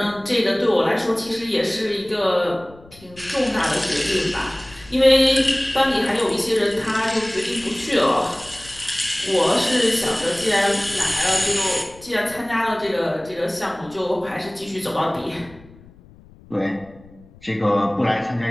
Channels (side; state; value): left; noise; rumble, 24 dB below the sound